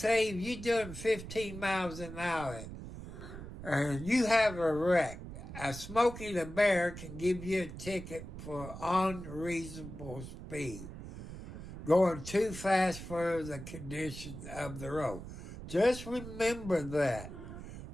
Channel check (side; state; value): right; noise; rumble, 11 dB below the sound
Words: if you're doing 15 miles an hour and you have a wreck, a Smokey the Bear can give you a ticket for unreasonable speed, going too fast for the conditions of the road. Just remember that.